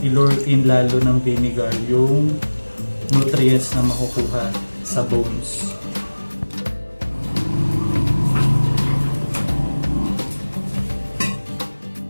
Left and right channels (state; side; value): inverted; both; correlation -1.00